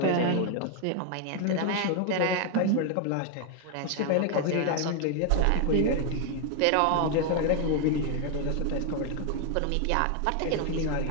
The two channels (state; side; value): different; both; correlation 0.01